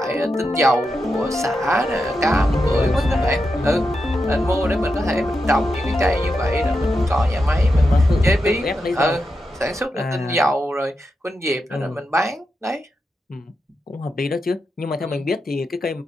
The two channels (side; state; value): both; normal; correlation 0.87